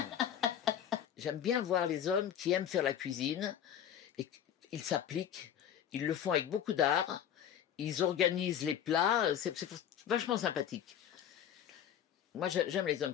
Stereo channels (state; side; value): quieter; right; 9.6 dB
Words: J'aime bien voir les hommes qui aiment faire la cuisine et ils s'appliquent, ils le font avec beaucoup d'art, ils organisent les plats, c'est vachement sympathique. Moi, j'aime les hommes